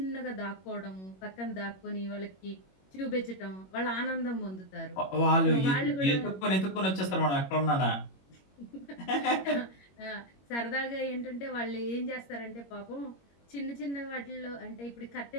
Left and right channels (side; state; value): right; late; 21 ms